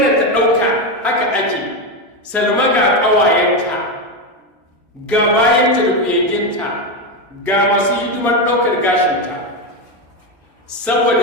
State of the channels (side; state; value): both; normal; correlation 0.11